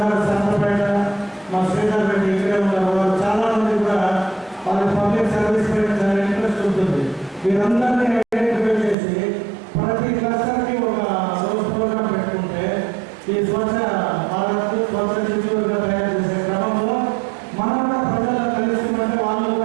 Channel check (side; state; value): left; drops out; at 9.0 s